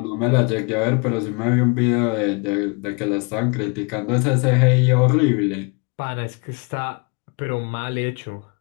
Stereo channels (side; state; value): right; quieter; 31.1 dB